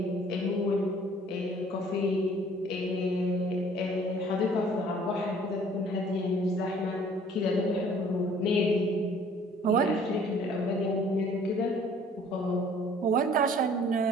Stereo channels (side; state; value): both; normal; correlation 0.55